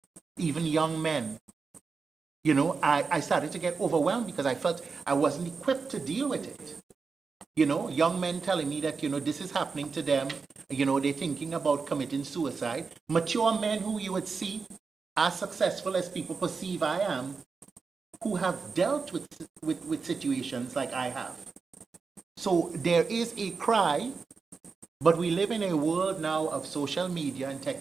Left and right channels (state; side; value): quieter; left; 4.9 dB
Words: even young men. You know, I started to get overwhelmed because I felt I wasn't equipped to deal with it. You know, young men telling me that, you know, this is happening to them. You know, they're thinking about committing suicide. Mature men who you would see as successful as people perceive I am, who have dealt with situations like I have. So there is a cry, but we live in a world now of social media and